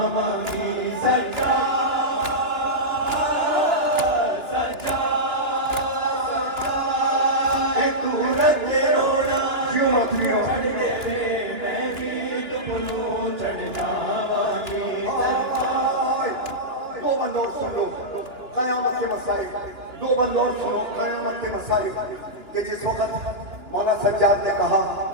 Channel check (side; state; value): left; late; 2.8 ms